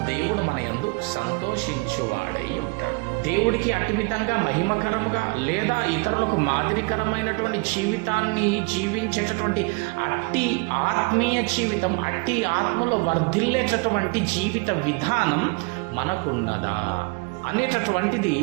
దేవుడు మన యందు సంతోషించువాడై ఉంటాడు. దేవుడికి అట్టి విధంగా మహిమకరముగా లేదా ఇతరులకు మాదిరికరమైనటువంటి జీవితాన్ని జీవించేటటువంటి అట్టి ఆత్మీయ జీవితం, అట్టి ఆత్మలో వర్ధిల్లేటటువంటి జీవిత విధానం మనకున్నదా అనేటటువంటిది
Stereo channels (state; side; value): quieter; left; 30.4 dB